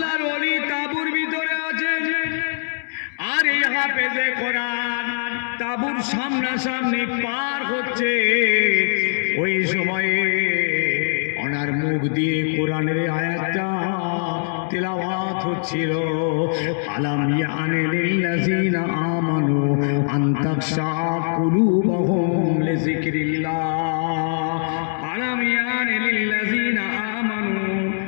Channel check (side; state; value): right; silent; digital silence